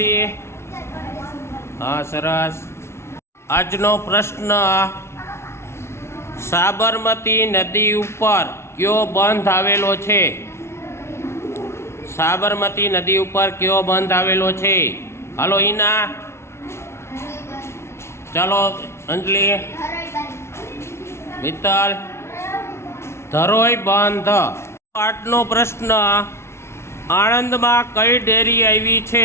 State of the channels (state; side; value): late; right; 0.13 ms